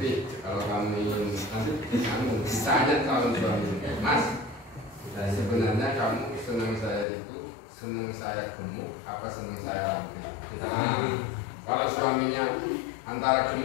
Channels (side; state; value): right; drops out; at 7.1 s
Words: kalau kami nanti kamu ditanya calon suami, mas, sebenarnya kamu senang saya itu senang saya gemuk apa senang saya ramping? Kalau suaminya antara